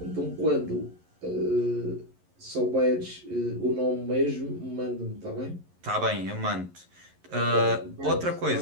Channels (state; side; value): late; left; 11 ms